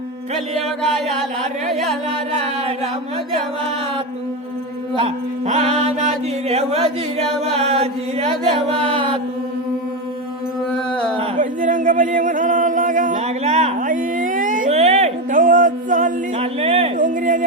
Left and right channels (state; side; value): normal; both; correlation 0.14